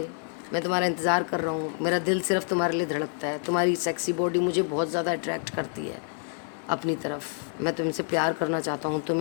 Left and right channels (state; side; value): silent; right; 56 dB below the other